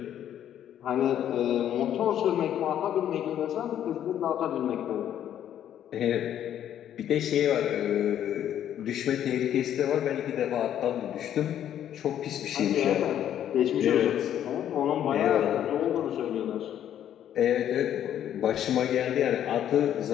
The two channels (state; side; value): quieter; right; 10.5 dB